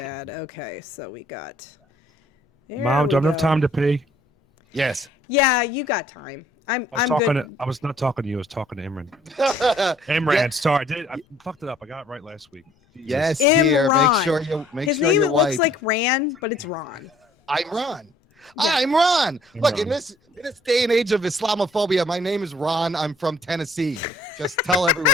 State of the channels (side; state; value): both; normal; correlation 0.59